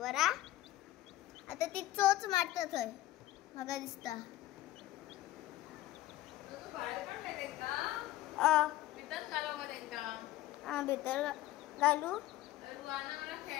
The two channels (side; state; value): right; quieter; 15.5 dB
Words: हा. आता ती चोच मारता थंय म्हाका दिसता. भितर घालू